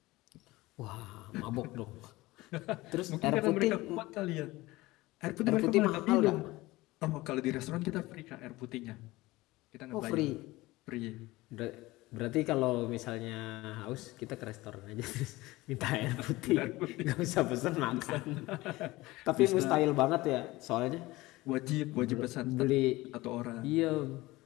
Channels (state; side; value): quieter; right; 19.6 dB